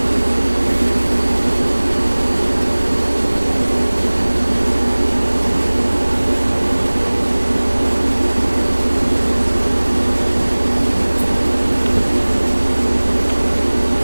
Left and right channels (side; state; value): both; inverted; correlation -1.00